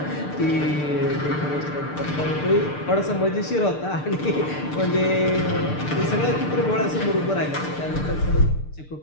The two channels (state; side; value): late; right; 6.7 ms